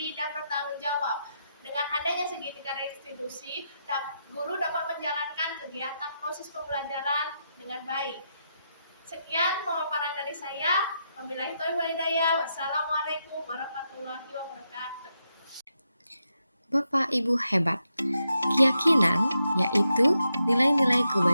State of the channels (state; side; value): inverted; both; correlation -0.84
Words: dan bertanggung jawab. Dengan adanya segitiga restitusi, guru dapat menjalankan kegiatan proses pembelajaran dengan baik. Sekian pemaparan dari saya. Wabillahi taufiq wal hidayah. Wassalamualaikum warahmatullahi wabarakatuh. Bapak Ibu hebat. Keyakinan yaitu nilai-nilai